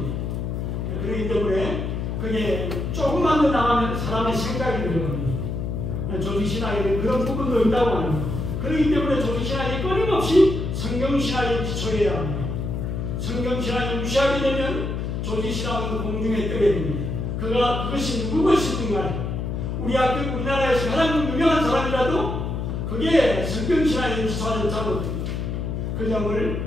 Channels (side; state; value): left; noise; hum, 3 dB below the sound